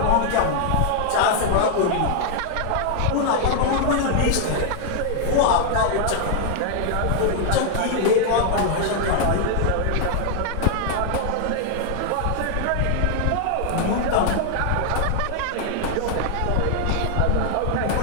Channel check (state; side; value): different; both; correlation 0.00